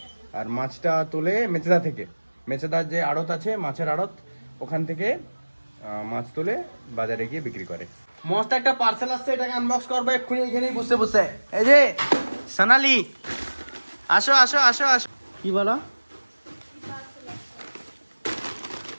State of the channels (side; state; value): both; inverted; correlation -1.00